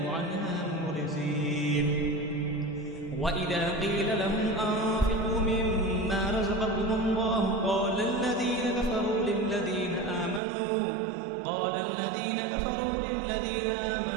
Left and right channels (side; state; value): left; drops out; at 10.4 s